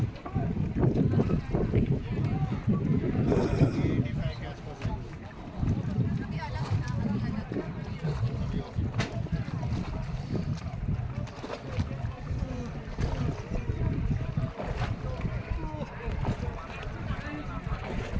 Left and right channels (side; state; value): both; identical; correlation 1.00